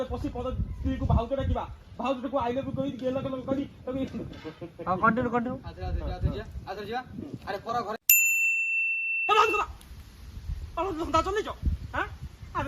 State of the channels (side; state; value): both; identical; correlation 1.00